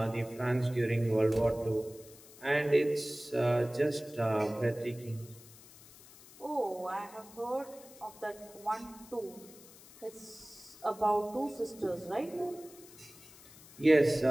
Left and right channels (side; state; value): left; noise; hiss, 21 dB below the sound